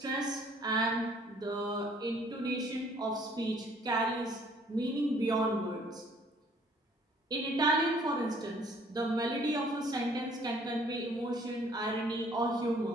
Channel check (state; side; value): normal; both; correlation 0.59